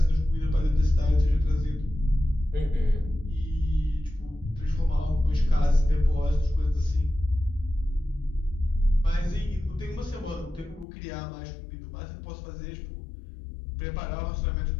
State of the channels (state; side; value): drops out; right; at 10.9 s